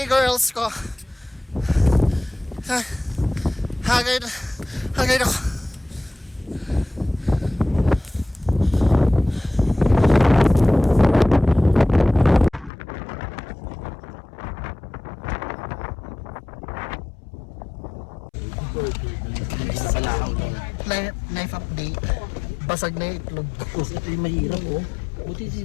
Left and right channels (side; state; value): right; drops out; at 12.7 s